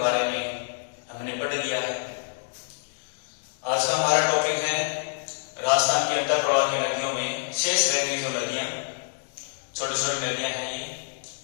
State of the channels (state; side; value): silent; right; digital silence